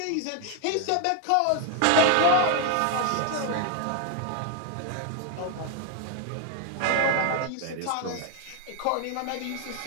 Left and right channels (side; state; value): both; different; correlation 0.01